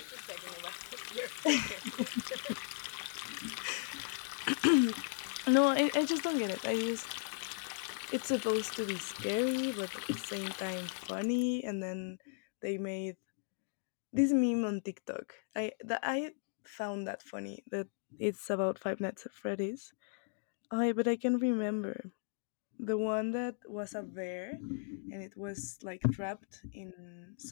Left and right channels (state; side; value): silent; right; digital silence